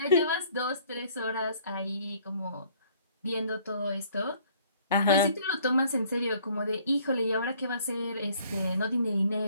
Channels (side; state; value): both; inverted; correlation -0.58